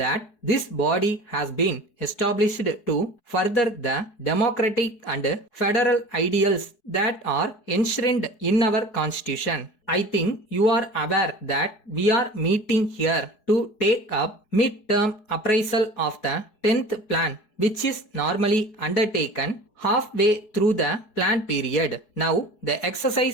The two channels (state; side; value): late; right; 4.7 ms